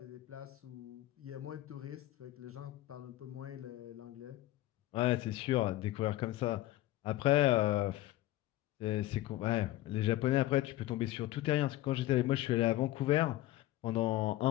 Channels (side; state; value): right; quieter; 15.9 dB